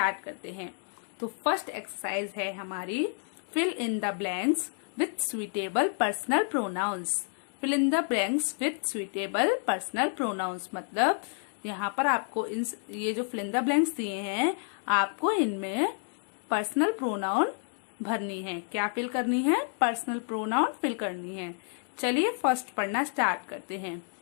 करते हैं। तो फर्स्ट एक्सरसाइज है हमारी fill in the blanks with suitable personal pronouns. Fill in the blanks with suitable personal pronouns मतलब यहाँ पर आपको ये जो फिल इन द ब्लैंक्स दिए हैं, आपको इनमें पर्सनल प्रोनाउन भरनी है। क्या फिल करनी है? पर्सनल प्रोनाउन फिल करनी है। चलिए फर्स्ट पढ़ना स्टार्ट करते हैं।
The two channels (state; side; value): silent; right; 58 dB below the other